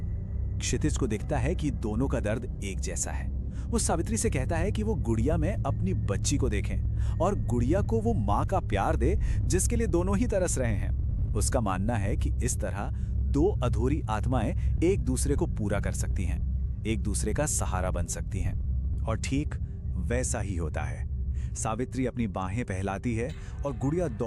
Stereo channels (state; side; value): identical; both; correlation 1.00